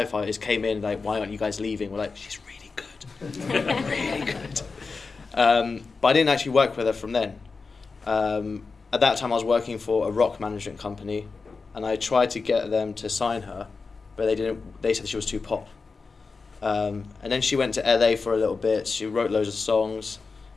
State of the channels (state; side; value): quieter; right; 4.4 dB